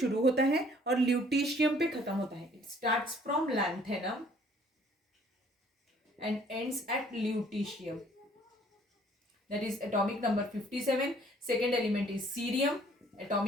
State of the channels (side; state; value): both; normal; correlation 0.58